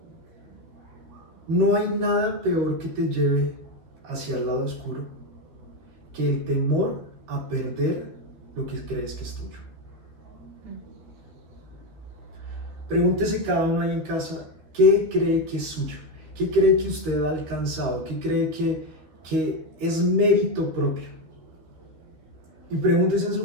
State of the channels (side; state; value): left; late; 12 ms